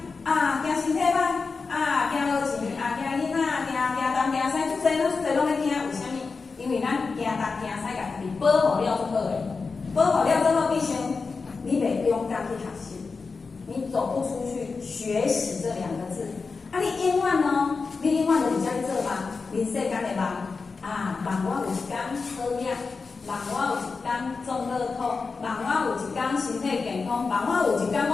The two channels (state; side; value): quieter; right; 4.5 dB